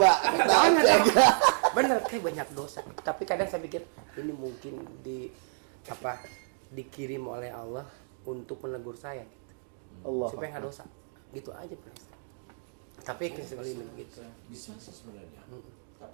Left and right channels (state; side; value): silent; left; digital silence